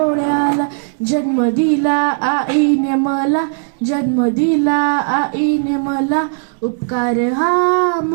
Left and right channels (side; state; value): left; silent; digital silence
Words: जन्म दिला आईने मला, जन्म दिला आईने मला, उपकार हा